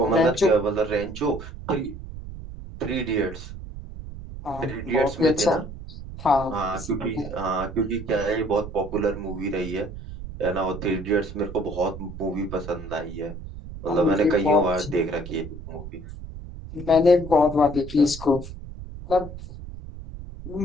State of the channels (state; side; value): noise; right; rumble, 11 dB below the sound